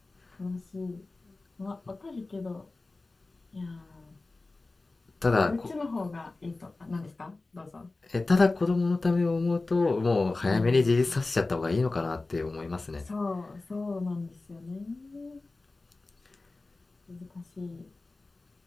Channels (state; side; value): quieter; right; 3.3 dB